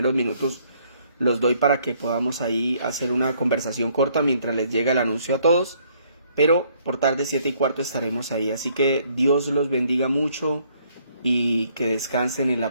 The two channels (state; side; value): inverted; both; correlation -0.65